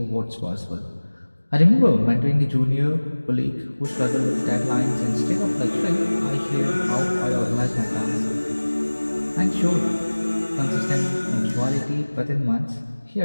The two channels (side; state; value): both; inverted; correlation -1.00